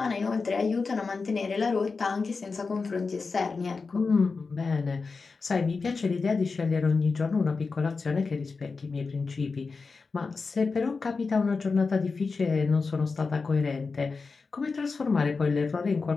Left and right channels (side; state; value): right; quieter; 4.5 dB